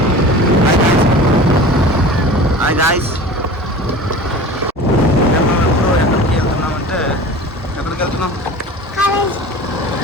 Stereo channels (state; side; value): normal; both; correlation 0.38